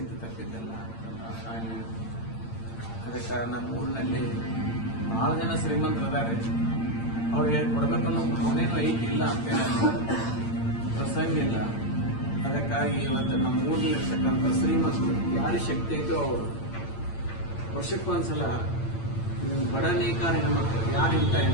ತಪ್ಪಿದ್ದಲ್ಲ ತಾಯಿ. ಅದಕ್ಕೆ ನಮ್ಮ ಊರಿನಲ್ಲಿ ಬಹಳ ಜನ ಶ್ರೀಮಂತರು ಅದಾರೆ, ಅವ್ರಿಗೆ ಕೊಡ್ಬೇಕನ್ನೋ ಭಾವನೆನೂ ಐತಿಲ್ಲ ಅಂತ ಪ್ರಸಂಗ ಇಲ್ಲ. ಅದಕ್ಕಾಗಿ ಇವತ್ತು ನಮ್ಮ ಊರಿನಲ್ಲಿರ್ತಕ್ಕಂಥ ಶ್ರೀಮಂತರು ಯಾರಿಗೆ ಶಕ್ತಿ ಐತೋ ಅವರು ವರ್ಷಕ್ಕೊಂದ್ಸಲ ಬಡ ನೇಕಾರ ಹೆಣ್ಮಕ್ಳು ಯಾರಿಂತ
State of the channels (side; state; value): right; late; 8.8 ms